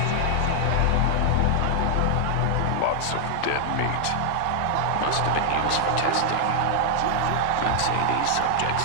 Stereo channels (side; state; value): both; different; correlation -0.01